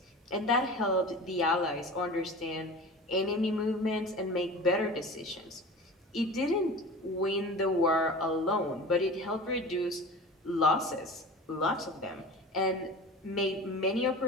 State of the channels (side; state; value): both; normal; correlation 0.35